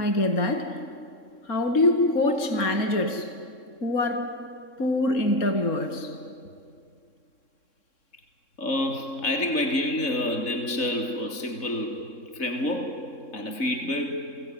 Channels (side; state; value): right; late; 3.6 ms